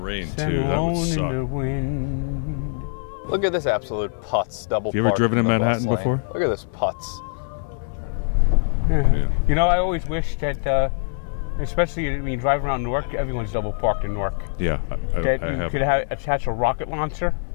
stand too. alone in the wind. Look at this absolute putz double You ever park driven in the Manhattan bus lane. before? Look at this putz. I try to forget. You know, I always think wish it's that, been- especially when you drive know what? around Newark, I've everyone's never double driven parked in in Newark. Yeah. That I you have. could never. attach a rocket launcher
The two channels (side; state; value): right; silent; 63 dB below the other